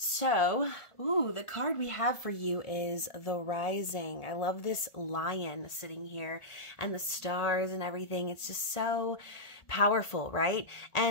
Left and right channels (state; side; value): late; right; 1.4 ms